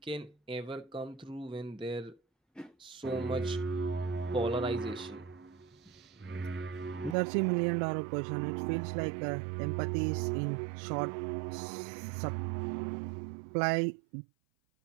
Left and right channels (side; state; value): left; drops out; at 7.2 s